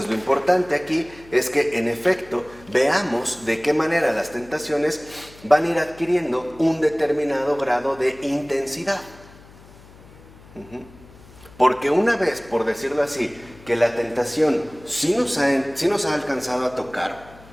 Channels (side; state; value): left; noise; hum, 23 dB below the sound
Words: lo importante aquí es que, en efecto, veamos de qué manera las tentaciones van a ir adquiriendo un determinado grado de intensidad. Porque una vez, por decirlo así, que la tentación sí nos ha alcanzado a tocar,